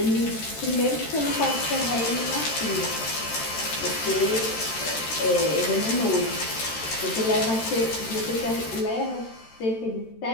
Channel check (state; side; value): late; right; 13 ms